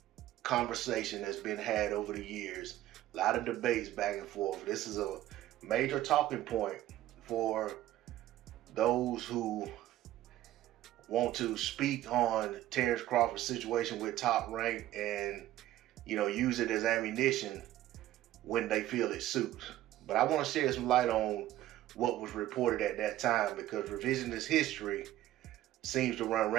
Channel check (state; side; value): quieter; left; 14.1 dB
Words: conversation that's been had over the years, a lot of debates back and forth. This is a major talking point for those who want to speak on Terence Crawford's situation with Top Rank and, you know, use it as ammunition when they feel it suits. But I want to shed some light on what was reported at that time, because revisionist history seems to run